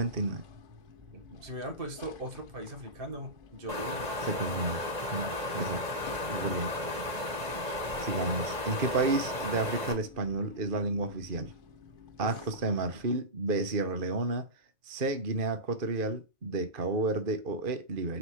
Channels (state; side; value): late; left; 1.9 ms